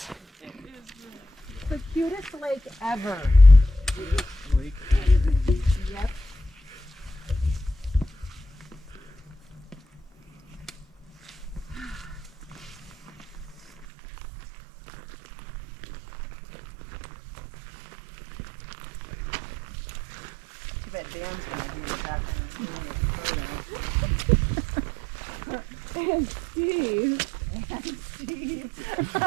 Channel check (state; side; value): drops out; left; at 13.9 s